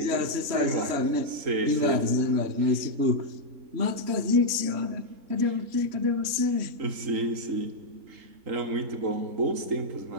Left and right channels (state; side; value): late; left; 3.1 ms